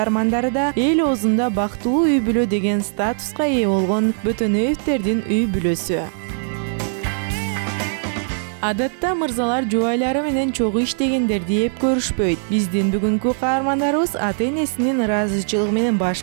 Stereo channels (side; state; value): left; silent; digital silence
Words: да эл оозунда бактылуу үй бүлө деген статуска ээ болгон Бөтөнөевтердин үй бүлөсү. Адатта мырзалар жубайлары менен чогуу иштегендерди эп көрүшпөйт. Биздин бүгүнкү каармандарыбыз ата-энесинин ыраазычылыгы менен